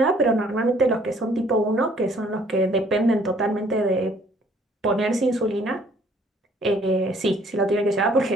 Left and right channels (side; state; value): both; normal; correlation 0.60